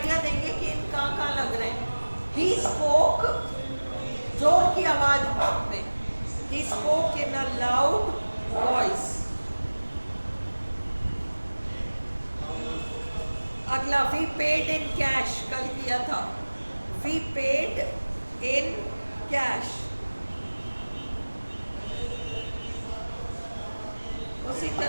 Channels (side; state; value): both; inverted; correlation -1.00